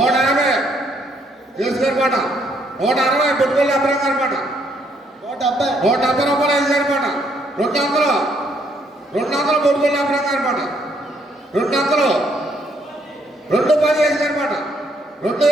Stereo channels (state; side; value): normal; both; correlation 0.70